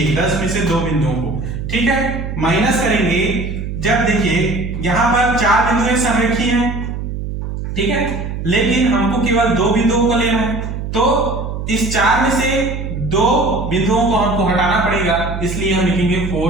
10 में से 2 बिंदुओं को, ठीक है। माइनस करेंगे जब देखिए यहां पर 4 बिंदु संरेखीय हैं, ठीक है, लेकिन हमको केवल 2 बिंदुओं को लेना है, तो इस 4 में से 2 बिंदुओं को हमको हटाना पड़ेगा, इसलिए हम लिखेंगे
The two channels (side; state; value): right; noise; hum, 5 dB below the sound